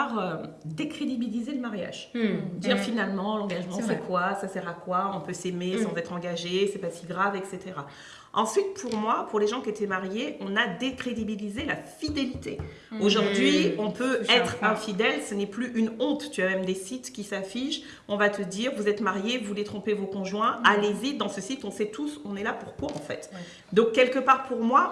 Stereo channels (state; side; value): identical; both; correlation 1.00